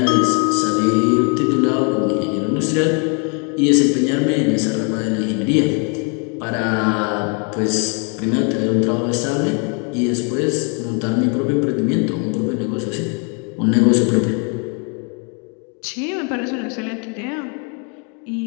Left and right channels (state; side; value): quieter; right; 37.1 dB